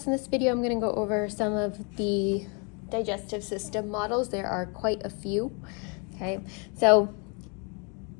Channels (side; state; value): right; quieter; 34.7 dB